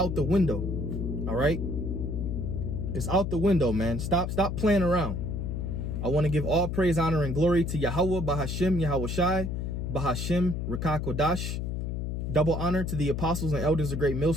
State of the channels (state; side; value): noise; left; hum, 3 dB below the sound